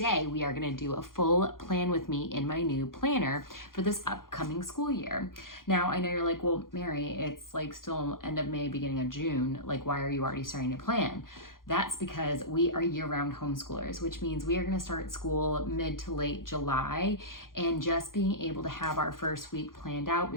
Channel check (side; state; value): right; late; 0.91 ms